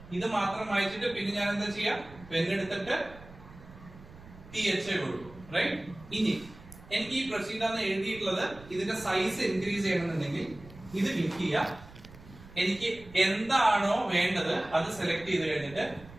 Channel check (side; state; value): right; noise; rumble, 19 dB below the sound